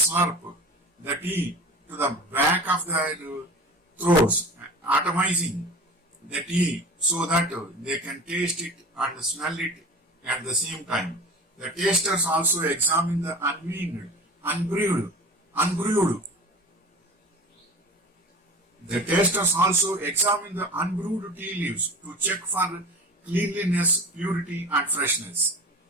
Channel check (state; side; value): normal; both; correlation 0.36